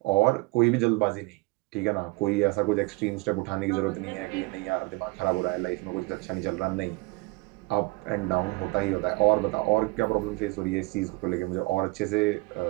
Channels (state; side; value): quieter; left; 24.3 dB